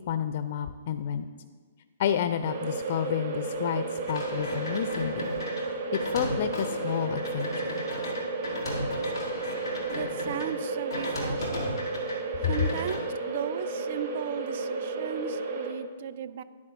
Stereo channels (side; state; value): both; inverted; correlation -0.48